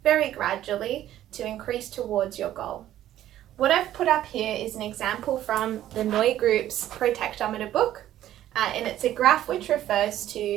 very gradually to increase towards your goal. What I've put up here is an example from the Noy Group's Protectometer book. And it's a graph which refers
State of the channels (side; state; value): left; quieter; 12.7 dB